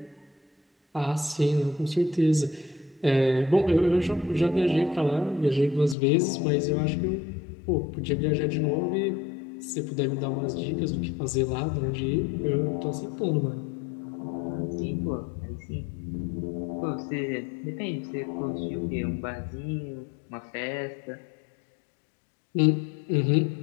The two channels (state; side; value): drops out; right; at 6.0 s